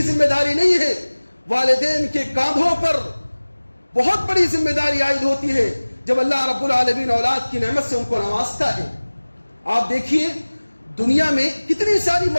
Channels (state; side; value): inverted; both; correlation -1.00